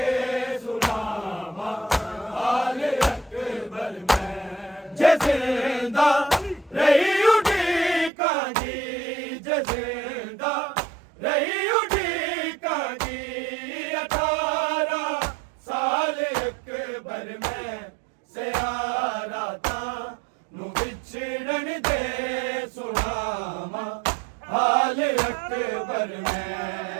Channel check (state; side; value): drops out; left; at 8.1 s